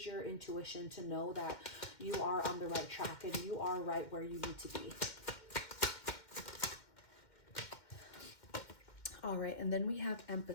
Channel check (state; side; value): late; right; 2.1 ms